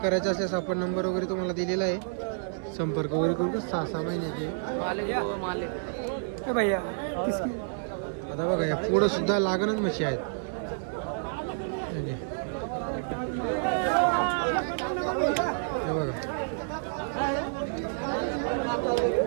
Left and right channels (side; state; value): left; silent; digital silence